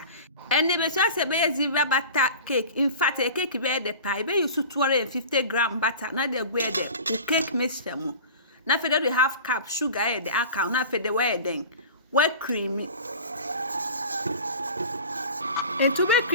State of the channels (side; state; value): both; inverted; correlation -0.37